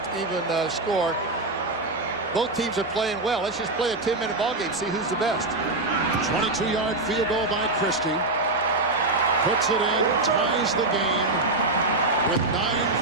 Both teams are playing well. Let's just play a 10-minute ball game, see who's the best. 22-yard field goal by Christie. Puts it in, ties the game with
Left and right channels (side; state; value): left; quieter; 3.0 dB